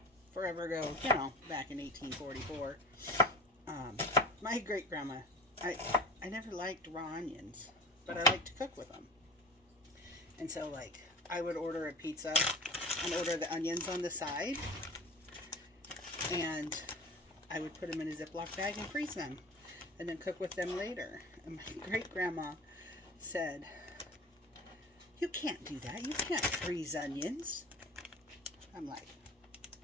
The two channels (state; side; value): normal; both; correlation 0.37